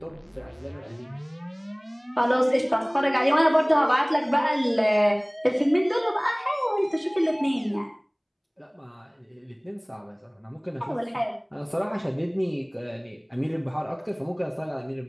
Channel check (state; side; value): identical; both; correlation 1.00